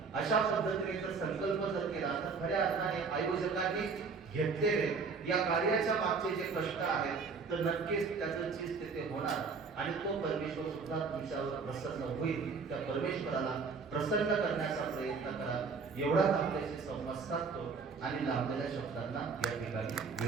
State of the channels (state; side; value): quieter; left; 5.0 dB